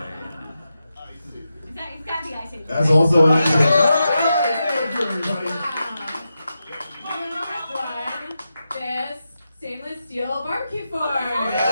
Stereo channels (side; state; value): both; inverted; correlation -0.89